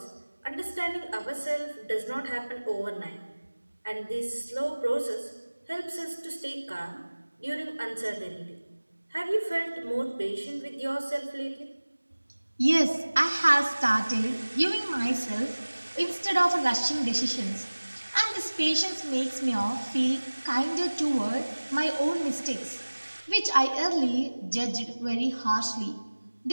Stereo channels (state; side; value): inverted; both; correlation -1.00